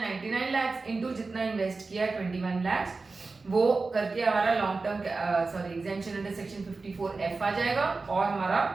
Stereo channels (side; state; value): left; quieter; 3.9 dB